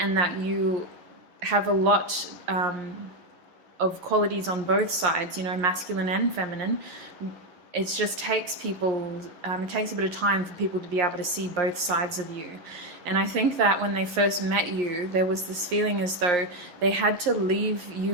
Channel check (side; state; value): left; late; 11 ms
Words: that you have a lot of qualities on both sides, masculine and feminine. It just takes people, it takes a bit of time for people to be able to see both sides of you. And I think that when they first met you, there was this feeling as though they had to leave